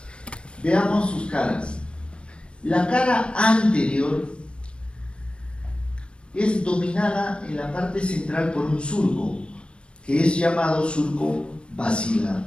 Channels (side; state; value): right; late; 0.057 ms